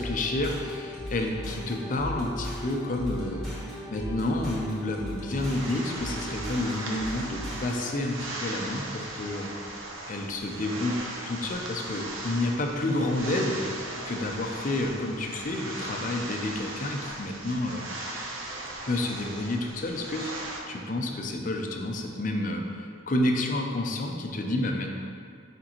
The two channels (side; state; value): both; normal; correlation 0.58